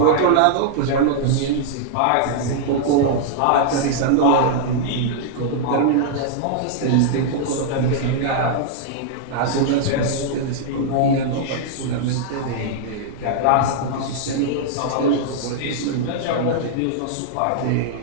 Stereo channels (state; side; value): different; both; correlation -0.01